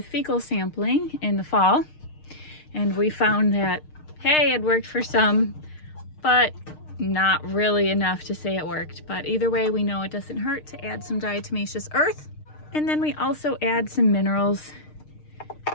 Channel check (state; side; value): late; right; 6.6 ms